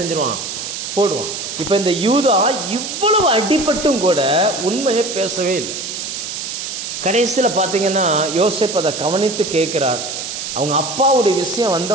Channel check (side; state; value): right; noise; hiss, 6 dB below the sound